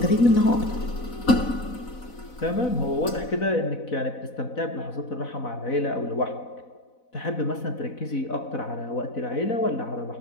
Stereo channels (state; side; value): late; right; 4.0 ms